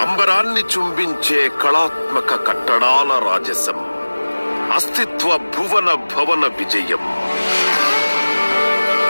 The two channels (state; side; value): inverted; both; correlation -1.00